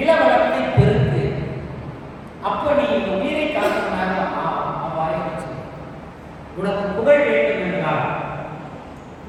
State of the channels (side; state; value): both; identical; correlation 1.00